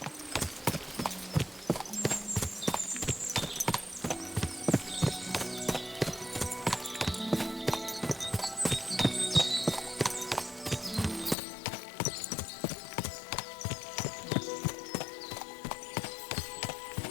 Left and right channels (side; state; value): right; drops out; at 11.4 s